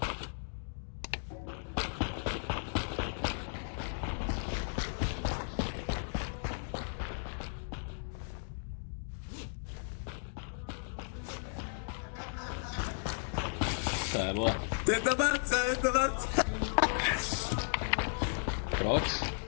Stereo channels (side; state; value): right; silent; digital silence